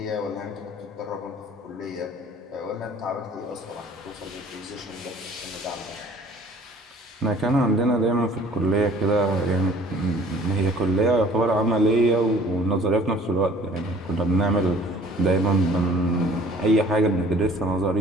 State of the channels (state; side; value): normal; both; correlation 0.52